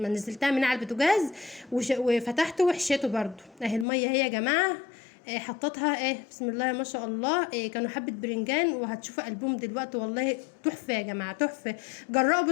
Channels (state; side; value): drops out; right; at 3.9 s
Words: نزلتها من على البوتاجاز، وفتحته وحشيته برضو اهي الميه اهي يا جماعه. حطيتها بسم الله ما شاء الله. كانوا حبه برنجان، وهتشوفوا قلبهم دلوقتي والله تحفه يا جماعه تحفه.